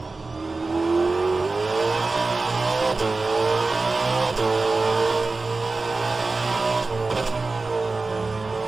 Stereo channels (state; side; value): quieter; left; 3.6 dB